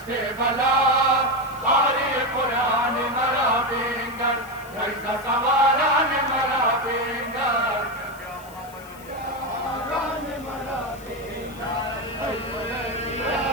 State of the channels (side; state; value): left; noise; hiss, 22 dB below the sound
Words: बला बारी कुरान मरा बिंगर नैज़ सवारान मरा बिंगर